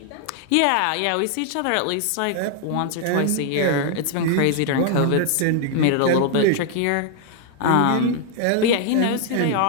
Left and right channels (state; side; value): different; both; correlation 0.00